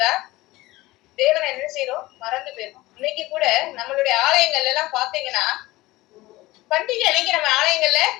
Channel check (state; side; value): quieter; right; 19.1 dB